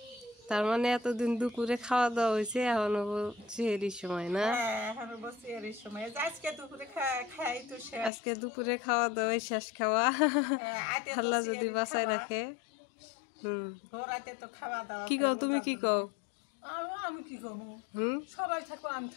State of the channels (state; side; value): drops out; right; at 8.1 s